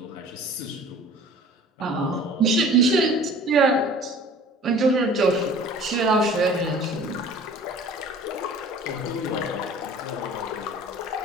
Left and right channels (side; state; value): both; normal; correlation 0.46